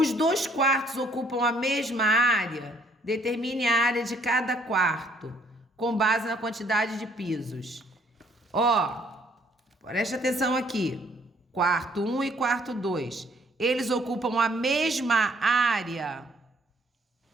2 quartos ocupam a mesma área? Determine a área de cada quarto, com base na quantidade de pisos. Preste atenção aqui. Quarto 1 e quarto 2. Eles ocupam a mesma área?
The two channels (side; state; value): both; normal; correlation 0.64